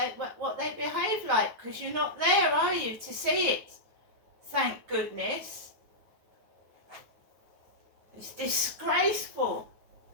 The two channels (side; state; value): left; late; 9.2 ms